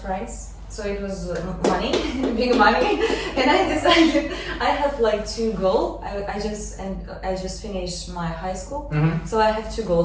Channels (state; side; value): identical; both; correlation 1.00